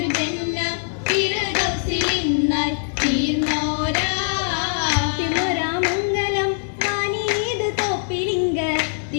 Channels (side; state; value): right; silent; digital silence